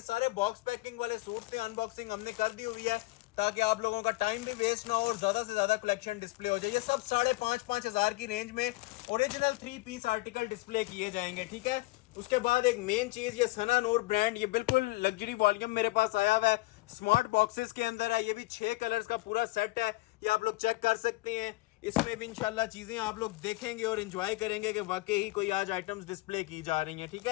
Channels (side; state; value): right; quieter; 21.1 dB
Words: सारे बॉक्स पैकिंग वाले सूट थे, अनबॉक्सिंग हमने कर दी हुई है ताकि आप लोगों का टाइम भी वेस्ट ना हो और ज्यादा से ज्यादा कलेक्शन डिस्प्ले हो जाए। ये सब 5,500 की रेंज में ओरिजिनल 3 पीस आर्टिकल डिस्प्ले किए जाएंगे। ठीक है, उसके बाद एक मेन चीज, ये सना नूर ब्रांड, ये बिल्कुल लग्जरी वॉल्यूम मेरे पास आया हुआ है, स्मार्ट बॉक्सेस के अंदर है। ये भी 6 कलर्स का पूरा सेट है, ये आप लोग चेक कर सकते हैं। इसमें भी इंशाल्लाह चीजें आप लोग देखेंगे और एंजॉय करेंगे कि वाकई ही कोई आज आइटम्स डिस्प्ले की जा रही हैं। ठीक